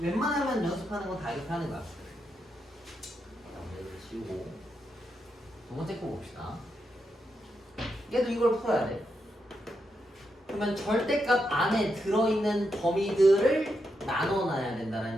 연습하는 건 다 이렇게 하는 거야. 이걸 지우고 두 번째 거 봅시다. 얘도 이걸 풀어야 돼. 그러면 절대값 안에 들어있는 범위들을 나눠놔야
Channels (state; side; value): normal; both; correlation 0.84